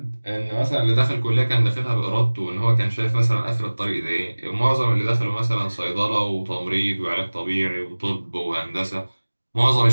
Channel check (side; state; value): both; inverted; correlation -1.00